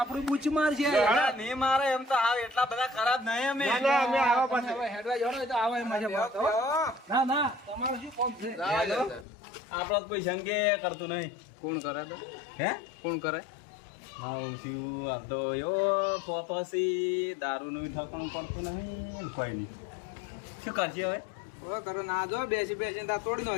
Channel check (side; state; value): right; drops out; at 9.2 s